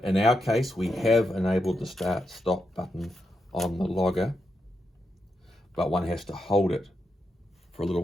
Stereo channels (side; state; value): both; normal; correlation 0.85